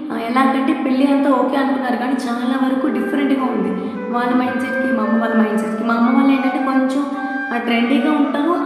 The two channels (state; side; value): identical; both; correlation 1.00